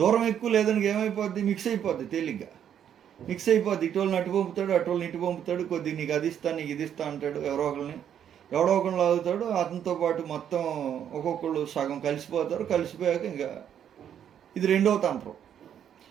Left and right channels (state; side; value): quieter; left; 9.3 dB